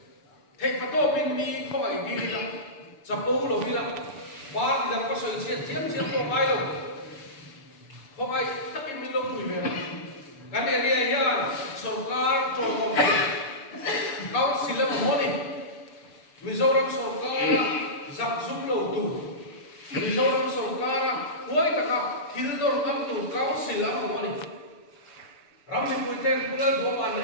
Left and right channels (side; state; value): right; late; 6.9 ms